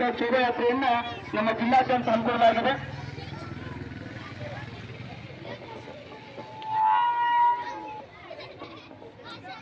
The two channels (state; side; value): identical; both; correlation 1.00